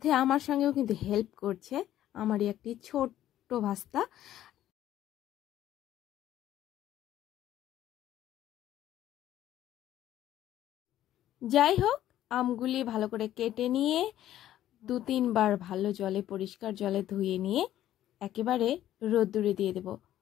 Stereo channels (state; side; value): quieter; right; 12.6 dB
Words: আমার সঙ্গেও কিন্তু হেল্প করছে আমারই একটি ছোট্ট ভাস্তা। যাই হোক, আমগুলি ভালো করে কেটে নিয়ে 2-3 বার ভালো জলে, পরিষ্কার জলে ধুয়ে নিয়ে একেবারে রোদ্দুরে দিয়ে দেব।